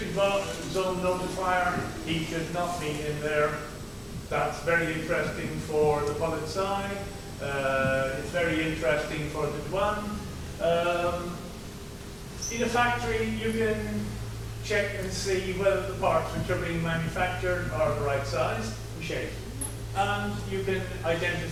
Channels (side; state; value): both; identical; correlation 1.00